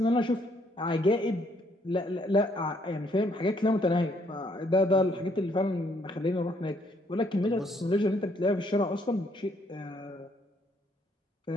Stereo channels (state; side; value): normal; both; correlation 0.68